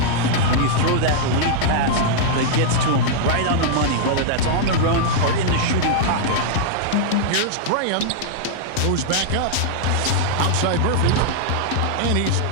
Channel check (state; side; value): different; both; correlation -0.01